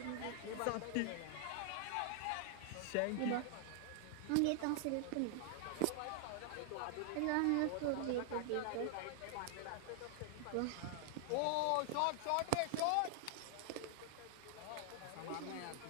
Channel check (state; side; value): different; both; correlation 0.00